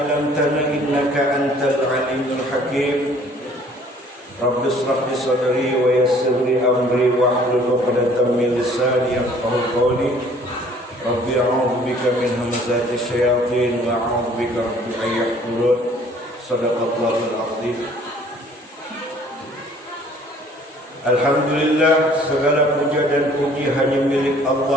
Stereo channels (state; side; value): normal; both; correlation 0.56